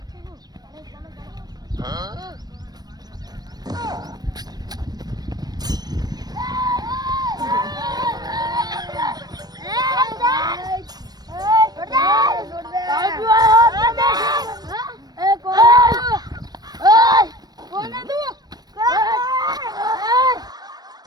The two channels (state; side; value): late; left; 0.19 ms